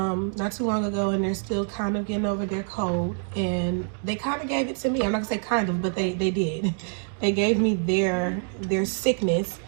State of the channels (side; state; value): left; silent; 61 dB below the other